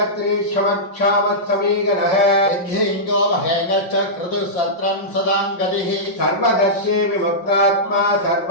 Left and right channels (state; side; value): late; right; 5.6 ms